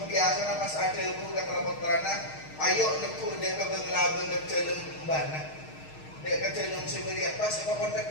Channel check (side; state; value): right; late; 6.4 ms